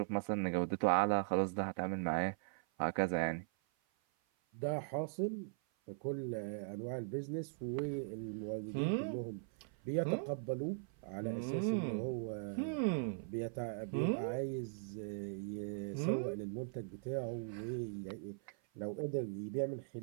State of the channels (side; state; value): left; silent; 51 dB below the other